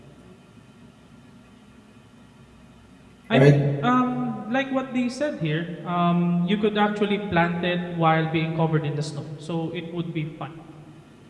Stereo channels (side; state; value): both; identical; correlation 1.00